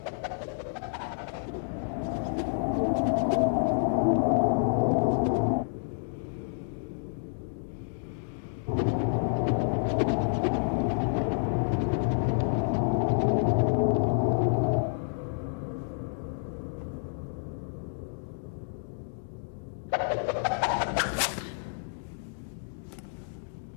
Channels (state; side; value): silent; right; digital silence